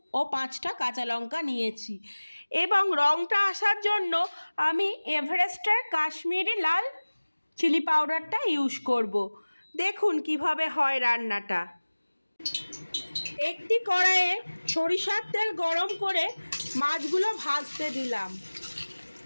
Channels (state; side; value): inverted; both; correlation -1.00